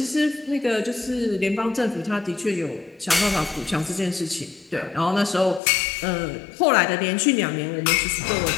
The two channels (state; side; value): drops out; right; at 5.6 s